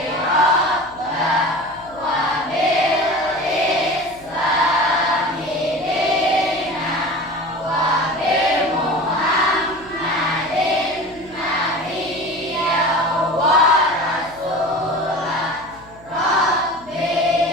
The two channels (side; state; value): left; noise; hum, 24 dB below the sound